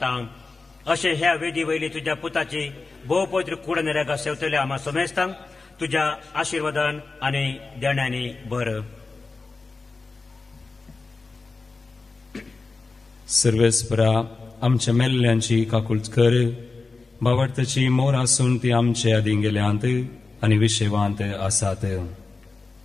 अशें ह्या वेदी वयली तुझ्या पुताची भोव पवित्र कूड नेऱ्यागा सेवतल्या आम्हा समेस्तांक तुझ्या आशिर्वादान आणि देण्यांनी भर. सर्वेस्परा आमच्या मेल्ल्यांची काकुळट कर. बावडताची मोर आसून ती आमचे आदीं गेल्यांत आनी विशेवांत आसात.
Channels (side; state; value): right; quieter; 3.9 dB